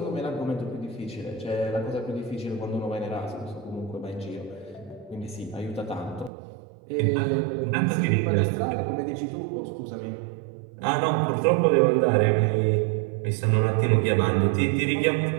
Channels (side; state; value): left; drops out; at 6.3 s